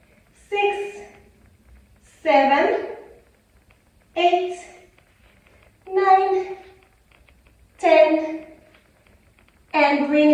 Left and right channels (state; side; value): identical; both; correlation 1.00